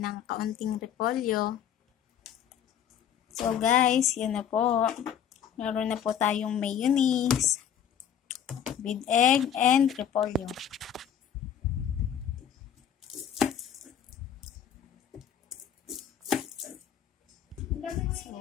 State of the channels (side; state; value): right; quieter; 9.0 dB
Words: ng kaunting repolyo. So, guys, yun na po. Meron na po tayong mayonnaise with egg and repolyo. So,